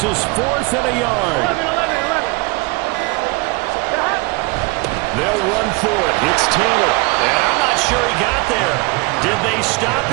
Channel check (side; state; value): left; quieter; 26.6 dB